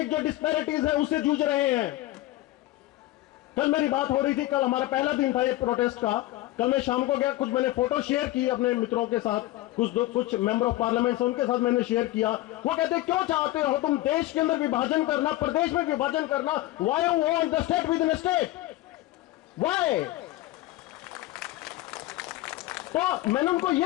जो डिस्पैरिटीज है उससे जूझ रहे हैं? कल मेरी बात हो रही थी, कल हमारा पहला दिन था ये प्रोटेस्ट का। कल मैं शाम को गया, कुछ मैंने फोटो शेयर की अपने मित्रों के साथ, कुछ मेंबर ऑफ पार्लियामेंट उनके साथ मैंने शेयर किया। वो कहते क्यों चाहते हो तुम देश के अंदर विभाजन करना, प्रदेश में विभाजन करना? Why you want the state with in state? Why? तो मैंने उनको ये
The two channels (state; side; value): quieter; right; 16.9 dB